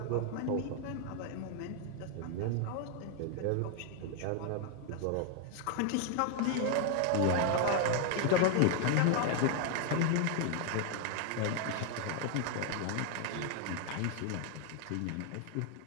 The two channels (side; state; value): both; different; correlation 0.00